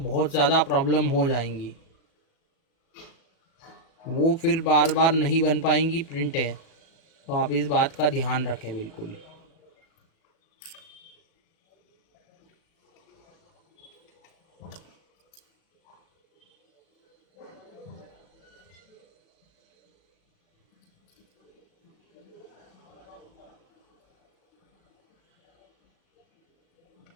ज़्यादा प्रॉब्लम हो जाएंगी। वो फिर बार बार नहीं बन पाएंगी प्रिंटें। तो आप इस बात का ध्यान रखें बिल्कुल।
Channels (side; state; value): right; late; 37 ms